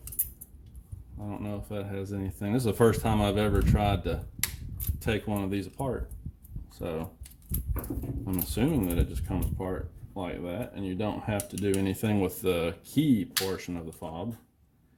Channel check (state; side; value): identical; both; correlation 1.00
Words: I don't know if that has anything. This is the first time I've ever tried to take one of these apart, so I'm assuming that it just comes apart like that, and you don't have to do anything with the key portion of the fob,